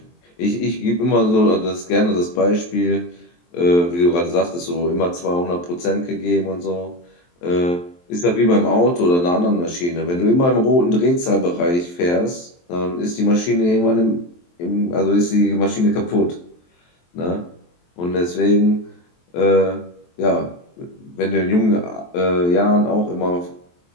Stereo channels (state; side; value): late; right; 23 ms